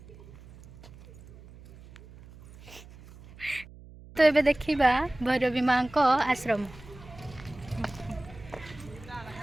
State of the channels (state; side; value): noise; right; hum, 19 dB below the sound